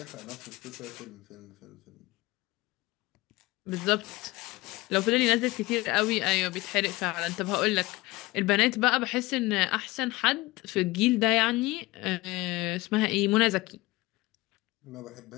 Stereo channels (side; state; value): right; quieter; 20.7 dB